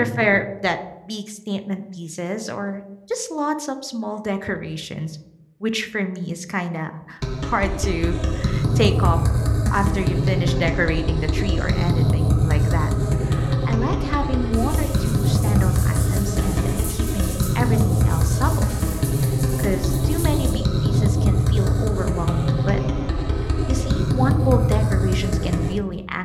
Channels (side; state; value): both; identical; correlation 1.00